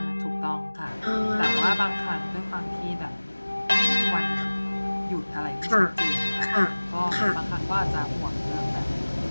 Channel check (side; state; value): both; inverted; correlation -1.00